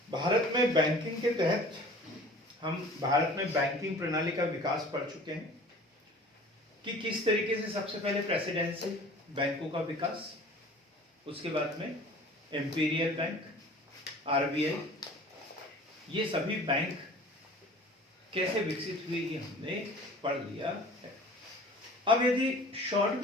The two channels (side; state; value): both; normal; correlation 0.45